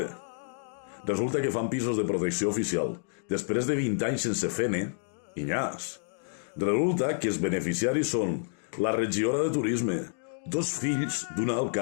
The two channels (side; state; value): right; silent; digital silence